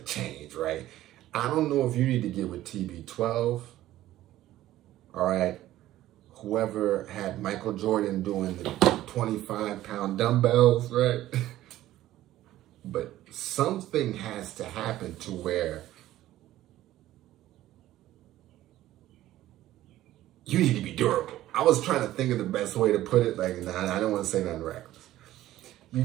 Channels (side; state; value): left; quieter; 14.4 dB